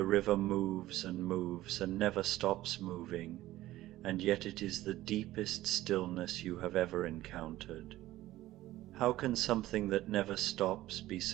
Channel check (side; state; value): left; quieter; 15.8 dB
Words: river moves and never stops moving, and yet it is the deepest stillness you have ever encountered. How can something that never stops be